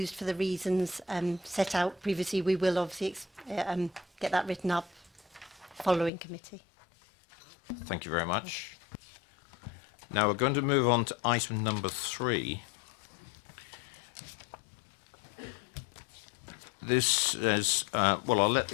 for the reasons set out previously. We will obviously get that written up following committee. Thank you very much. Now we're going to move on to item number 3. This is, well, I'll let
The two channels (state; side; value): drops out; right; at 6.1 s